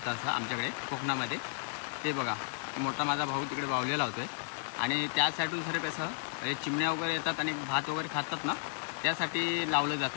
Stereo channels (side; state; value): right; silent; digital silence